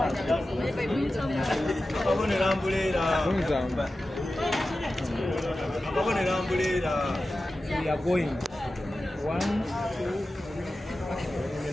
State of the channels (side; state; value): both; normal; correlation 0.94